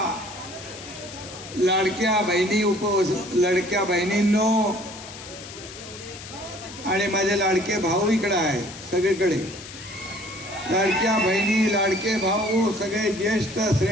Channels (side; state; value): left; noise; hiss, 14 dB below the sound